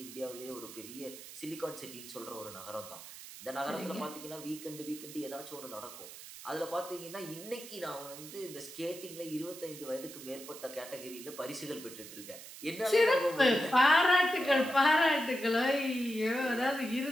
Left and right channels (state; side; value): noise; right; hiss, 14 dB below the sound